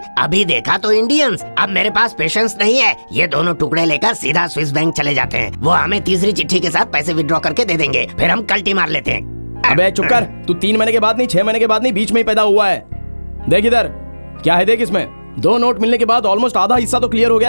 अभी देखा तो इंडियंस। अब मेरे पास पेशेंस नहीं है। ये दोनों टुकड़े लेकर सीधा स्विस बैंक चले जाते हैं। वो हमें तीसरी चिट्ठी के साथ पैसे विड्रॉ करके दे देंगे, फिर हम कल्टी मार लेते हैं। अबे चुप कर, तू 3 महीने के बाद नहीं 6 महीने के बाद नहीं, बीच में ही पैदा हुआ है। देख इधर, क्या है देख इसमें। 2 नोट मिलने के बाद ऑलमोस्ट आधा हिस्सा तो क्लियर हो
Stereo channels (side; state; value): both; inverted; correlation -1.00